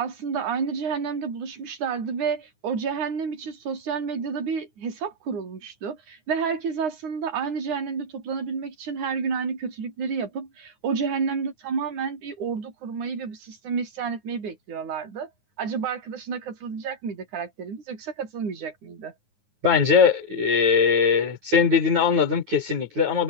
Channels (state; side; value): late; left; 9.6 ms